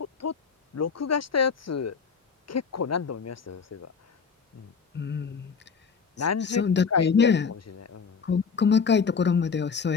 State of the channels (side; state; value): right; quieter; 5.7 dB